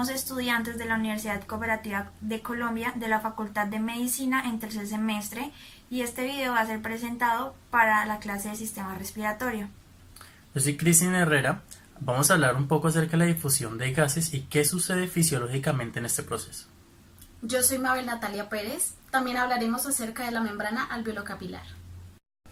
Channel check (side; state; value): both; identical; correlation 1.00